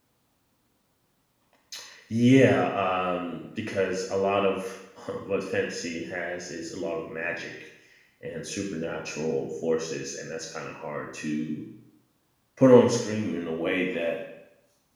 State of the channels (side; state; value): both; identical; correlation 1.00